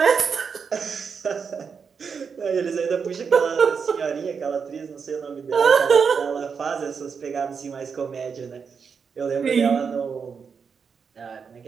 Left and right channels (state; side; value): quieter; left; 6.1 dB